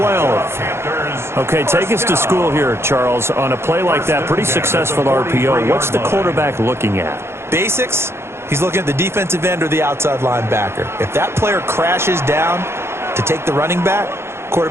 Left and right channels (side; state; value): left; late; 0.12 ms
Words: Okay, take us to school here, Charles. On a play like that, pretty successful RPO. What's the quarterback looking at? Basics, he's looking at the defensive end or the outside linebacker. If that player crashes down to take the running back,